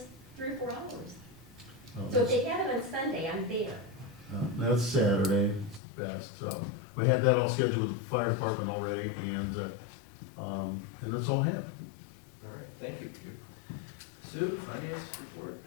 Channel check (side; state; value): right; drops out; at 5.8 s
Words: 3 or 4 hours. So if they have it on Sunday, I'm there. That's Saturday, it's the best, so, we had that all scheduled with the fire department already, and that's all I have. All right, thank you. Sue, finance report?